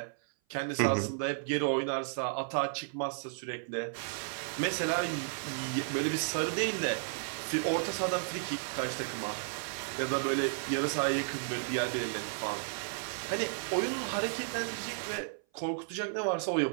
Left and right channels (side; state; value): left; silent; 55 dB below the other